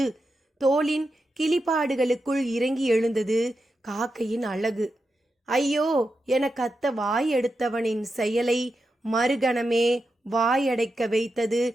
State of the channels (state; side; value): normal; both; correlation 0.88